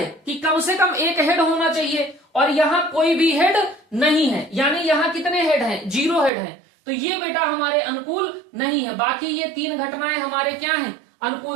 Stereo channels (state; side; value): drops out; left; at 6.3 s